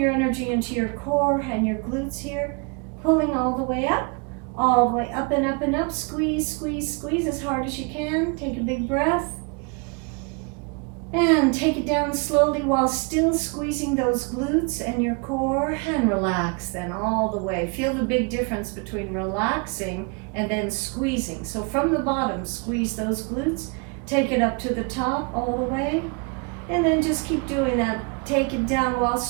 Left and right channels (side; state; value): left; quieter; 33.3 dB